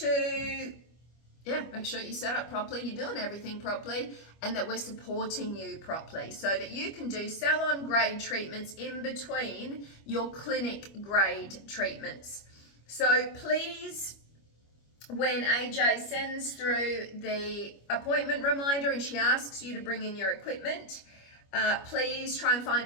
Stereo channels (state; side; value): late; right; 25 ms